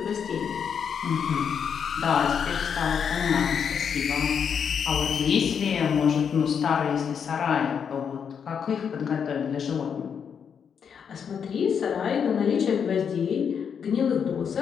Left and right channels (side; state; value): right; quieter; 7.2 dB